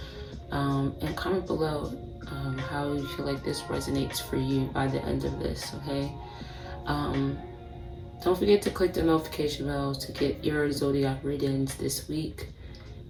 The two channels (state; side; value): identical; both; correlation 1.00